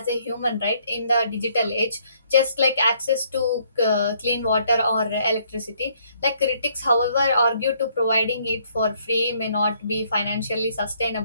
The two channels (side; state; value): both; inverted; correlation -0.67